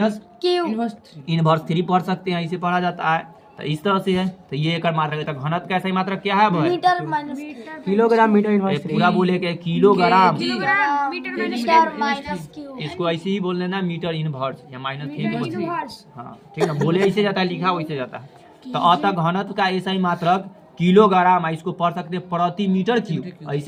इनवर्स 3 पढ़ सकते हैं, इसे पढ़ा जाता है। तो इस तरह से है। तो ये एक मात्रक है। तो घनत्व का सही मात्रक क्या है भाई? Metre minus kilogram metre inverse पूरा बोले के किलोग्राम, मीटर माइनस क्यूब। इसको ऐसे ही बोल लेना मीटर इनवर्स या माइनस 3। हाँ, ठीक है, बोले ऐसे जाता है, लिखा वैसे जाता है। तो अतः घनत्व का ऐसा ही मात्रक किलोग्राम, इसको पढ़ सकते हैं प्रति मीटर क्यूब,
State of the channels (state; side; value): identical; both; correlation 1.00